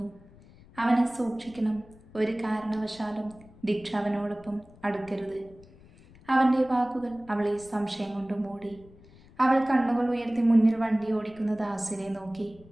അവനെ സൂക്ഷിക്കണം. ഒരു കാരണവശാലും ദീക്ഷ അവനോടൊപ്പം അടുക്കരുത്. അവൻ്റെ വാക്കുകൾ അവളെ സംശയം കൊണ്ട് മൂടി. അവൾ കണ്ണുകൾ ഉയർത്തി മുന്നിൽ വണ്ടി ഓടിക്കുന്ന ദാസിനെ നോക്കി.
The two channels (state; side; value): noise; left; rumble, 24 dB below the sound